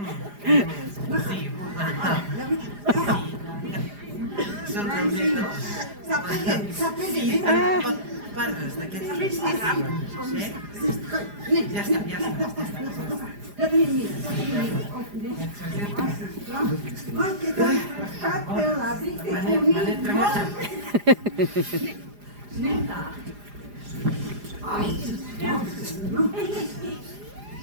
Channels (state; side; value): late; left; 4.9 ms